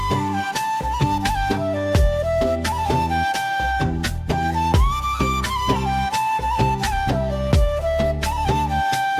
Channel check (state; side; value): identical; both; correlation 1.00